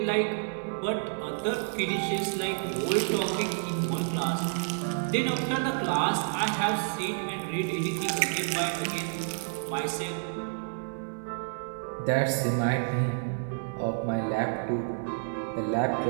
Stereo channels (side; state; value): left; silent; 58 dB below the other